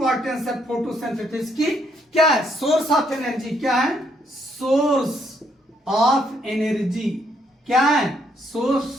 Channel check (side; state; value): both; normal; correlation 0.72